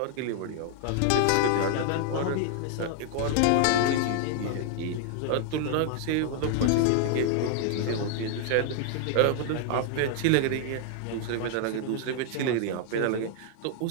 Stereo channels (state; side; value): different; both; correlation 0.00